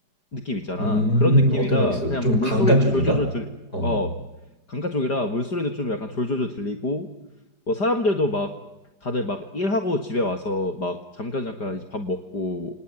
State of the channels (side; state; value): right; late; 5.0 ms